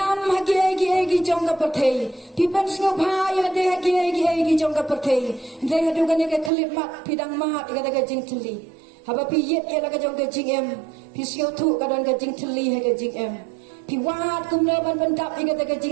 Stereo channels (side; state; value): left; drops out; at 6.5 s